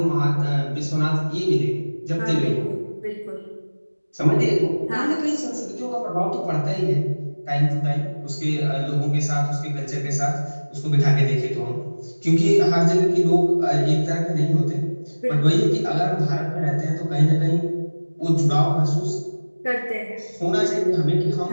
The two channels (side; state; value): both; inverted; correlation -1.00